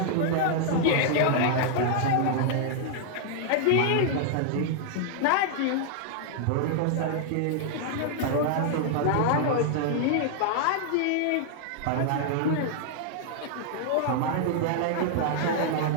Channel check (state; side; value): different; both; correlation -0.01